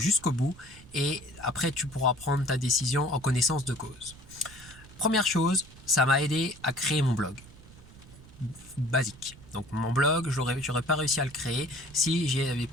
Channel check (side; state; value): right; noise; rumble, 20 dB below the sound